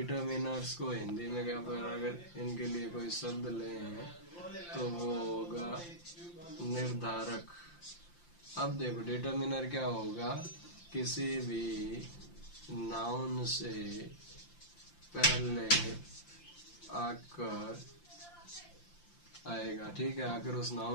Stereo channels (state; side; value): late; right; 5.8 ms